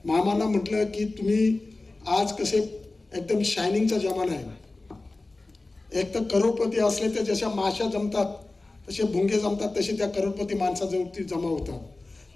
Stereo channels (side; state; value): right; quieter; 3.2 dB